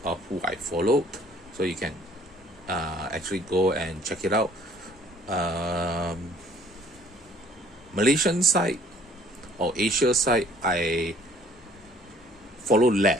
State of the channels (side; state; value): both; normal; correlation 0.57